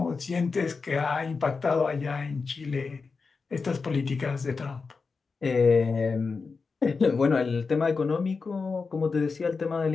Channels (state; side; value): quieter; right; 4.7 dB